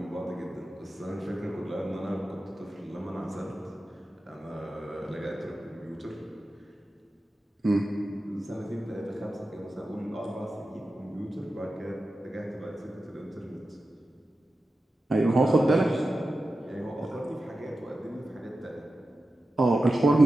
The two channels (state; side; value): normal; both; correlation 0.92